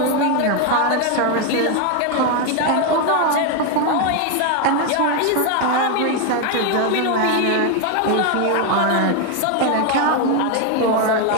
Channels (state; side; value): different; both; correlation 0.01